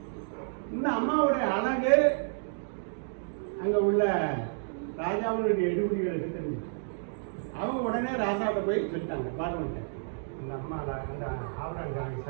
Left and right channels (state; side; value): silent; left; digital silence